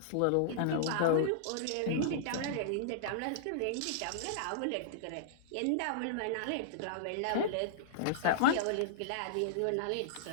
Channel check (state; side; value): different; both; correlation -0.02